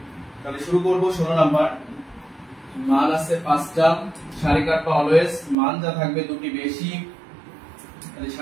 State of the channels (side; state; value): left; drops out; at 5.6 s